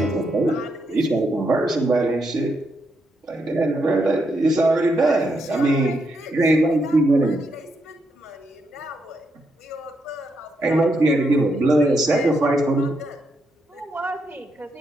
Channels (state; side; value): normal; both; correlation 0.80